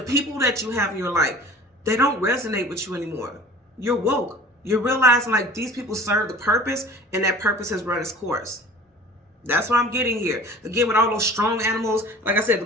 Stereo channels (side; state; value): both; normal; correlation 0.44